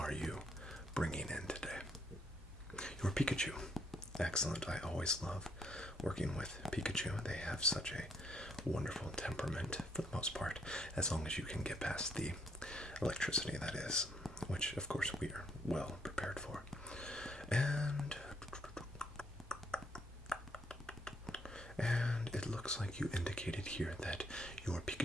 you bringing in today? Your Pikachu. Excellent. I always love working with Pikachu. They have such a wonderful temperament for the most part, as long as you can get past the electricity, that is, which of course we are well prepared for. And it looks like you indicated here that your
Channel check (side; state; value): both; normal; correlation 0.70